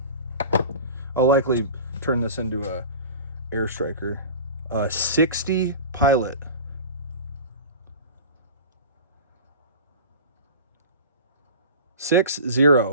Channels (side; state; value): both; inverted; correlation -0.36